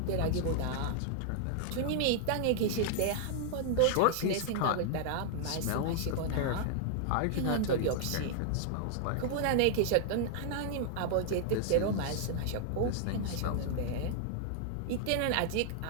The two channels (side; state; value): both; different; correlation 0.00